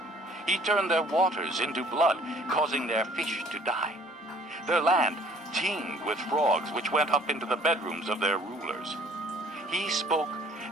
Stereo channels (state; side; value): normal; both; correlation 0.55